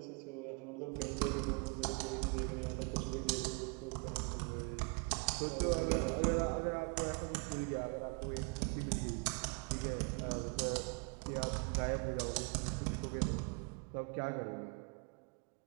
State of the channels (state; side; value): quieter; left; 34.7 dB